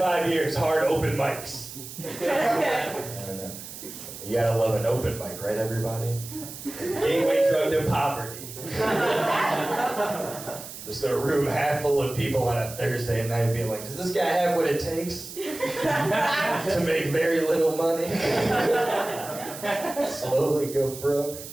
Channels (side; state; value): right; noise; hiss, 12 dB below the sound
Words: years, hard open mics. You gotta love an open mic, right, everybody? Gateway drug to poverty. Just a room half full of people on a Thursday night being like, does this guy have what it takes to make very little money? Slowly go broke?